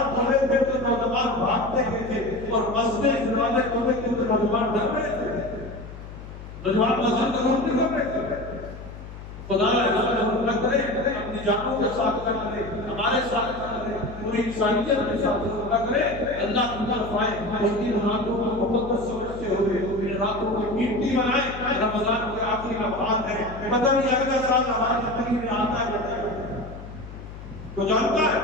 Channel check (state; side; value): noise; left; hum, 13 dB below the sound